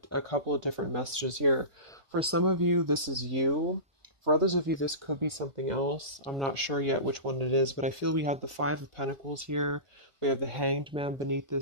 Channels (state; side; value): late; left; 1.5 ms